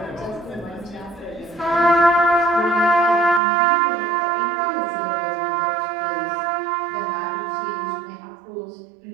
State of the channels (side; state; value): left; drops out; at 3.4 s